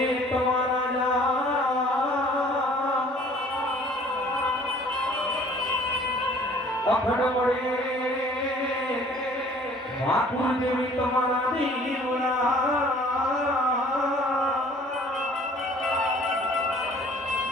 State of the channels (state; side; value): normal; both; correlation 0.53